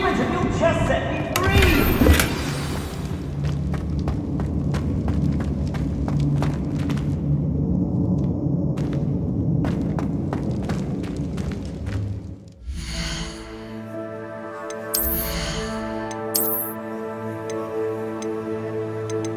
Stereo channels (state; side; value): identical; both; correlation 1.00